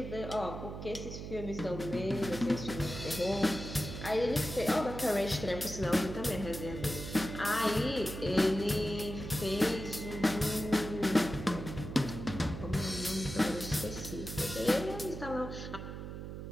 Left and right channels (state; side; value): noise; right; hum, 8 dB below the sound